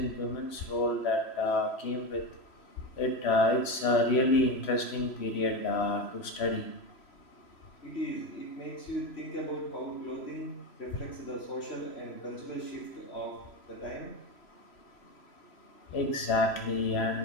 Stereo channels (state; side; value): late; right; 3.0 ms